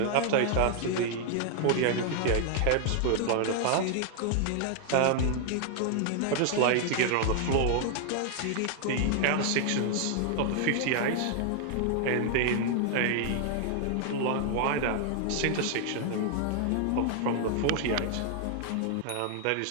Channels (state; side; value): different; both; correlation 0.00